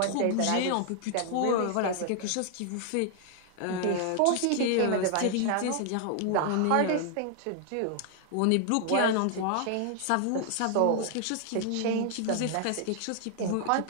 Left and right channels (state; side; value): different; both; correlation 0.00